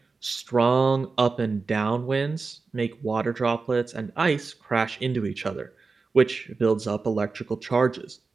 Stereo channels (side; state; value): left; quieter; 4.3 dB